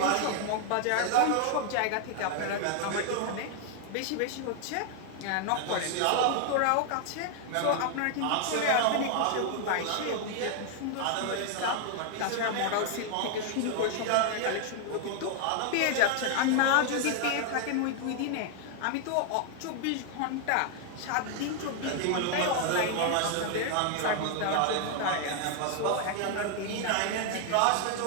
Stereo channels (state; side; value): different; both; correlation 0.00